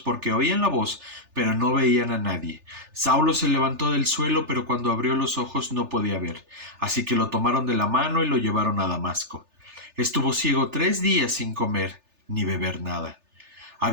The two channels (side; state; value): left; late; 3.4 ms